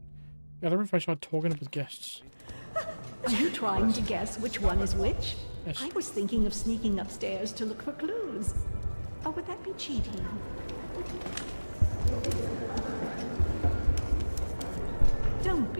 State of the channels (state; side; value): inverted; both; correlation -1.00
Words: Gather information about talking with guests. Are you trying to guess which one is which? Yes. I was thinking of sneaking upstairs to look for clues. Or would that be cheating? Don't